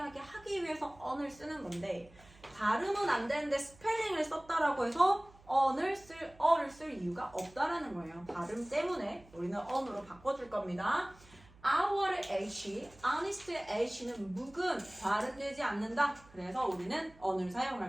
하기 위해서 언을 쓰는 건데 발음은 안 되는데 스펠링을 썼다라고 해서 어를 쓸 이유가 없다라는 거예요. 발음 때문에 우리는 언으로 바꿔줄 겁니다. Our H, honest의 H는 묵음, 발음되지 않는다. 그래서 우리는 언을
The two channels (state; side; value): noise; right; hum, 25 dB below the sound